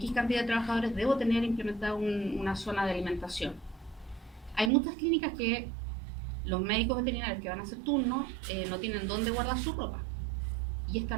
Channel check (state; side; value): drops out; left; at 4.7 s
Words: cantidad de trabajadores, debo tener implementada una zona de alimentación. Hay muchas clínicas que los médicos veterinarios que van a hacer turno no tienen dónde guardar su ropa. Y esta